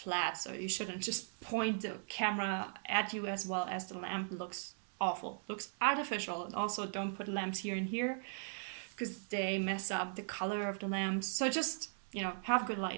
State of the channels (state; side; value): silent; left; digital silence